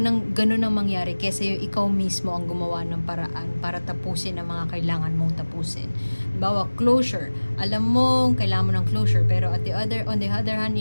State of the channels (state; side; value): inverted; both; correlation -1.00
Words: ang ganun ang mangyari kaysa yung ikaw mismo ang gumawa ng paraan para tapusin ang mga kailangan mong tapusin. Halimbawa, closure. Alam mo, kailangan mo ng closure, pero on the other hand,